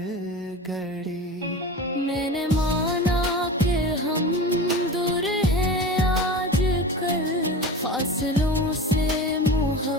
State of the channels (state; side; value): normal; both; correlation 0.32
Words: घड़ी। मैंने माना कि हम दूर हैं आजकल, फासलों से